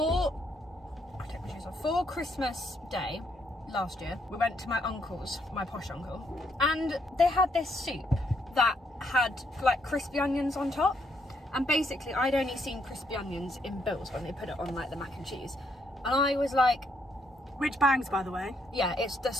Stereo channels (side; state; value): both; normal; correlation 0.73